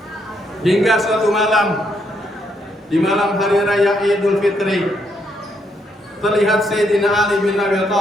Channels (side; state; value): both; normal; correlation 0.75